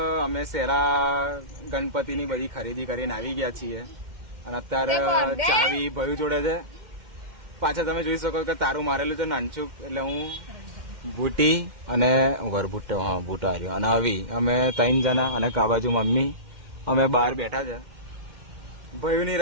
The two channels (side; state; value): left; late; 2.1 ms